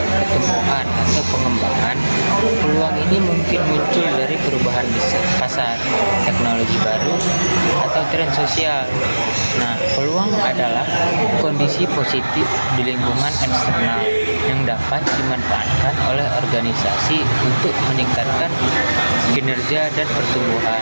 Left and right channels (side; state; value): both; inverted; correlation -1.00